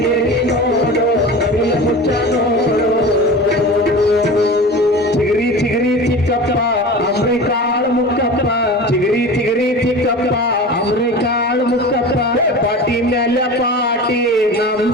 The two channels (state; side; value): normal; both; correlation 0.34